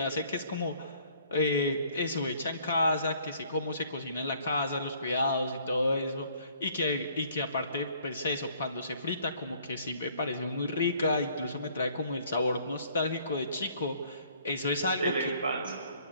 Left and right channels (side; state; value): both; inverted; correlation -0.60